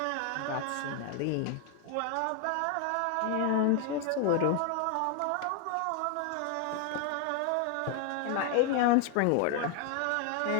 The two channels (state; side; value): different; both; correlation 0.00